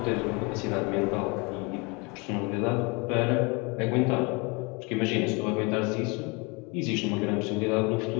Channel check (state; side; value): quieter; right; 28.7 dB